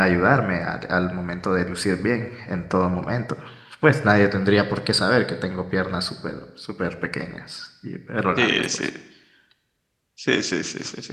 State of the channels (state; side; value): identical; both; correlation 1.00